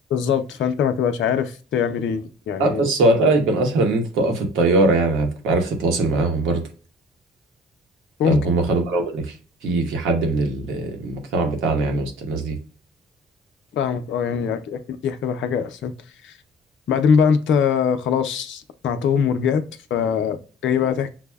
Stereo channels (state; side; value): normal; both; correlation 0.42